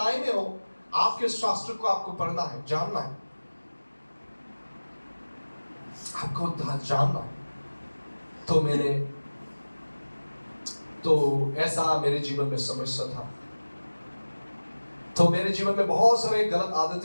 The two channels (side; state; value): both; inverted; correlation -1.00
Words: में हो, आपके शास्त्र को आपको पढ़ना है, जानना है, आपको जानना है। तो ऐसा मेरे जीवन में समस्या था। तो मेरे जीवन में बहुत सारे गलत